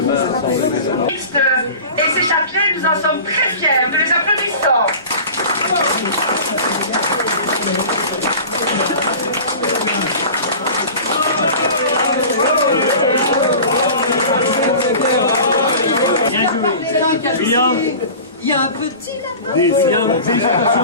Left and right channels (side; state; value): both; inverted; correlation -0.37